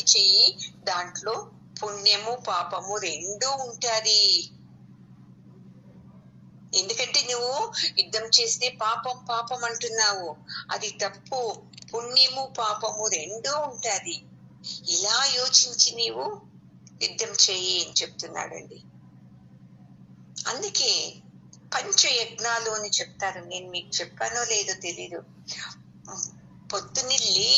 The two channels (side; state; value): both; identical; correlation 1.00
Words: చెయ్యి, దాంట్లో పుణ్యము పాపము రెండూ ఉంటాది. ఎందుకంటే నువ్వు యుద్ధం చేస్తే పాపం పాపం అంటున్నావు, అది తప్పు. పుణ్యము పాపము రెండూ ఉంటాది. ఇలా యోచించి నీవు యుద్ధం చెయ్యి అని చెప్తున్నాడండి. అందుకే పంచయజ్ఞాలు అని చెప్తారు. నేను మీకు చెప్పానో లేదో తెలీదు. పొద్దున్నే